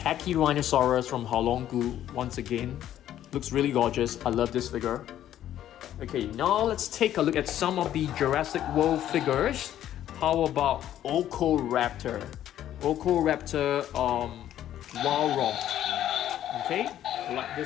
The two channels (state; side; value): quieter; right; 11.7 dB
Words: from Haolonggu. Once again, looks really gorgeous. I love this figure. Okay, now let's take a look at some of the Jurassic World figures. How about Ocoraptor? Ocoraptor, Walrus. Okay, I like